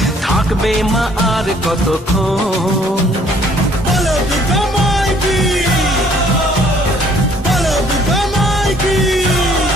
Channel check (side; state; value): both; normal; correlation 0.60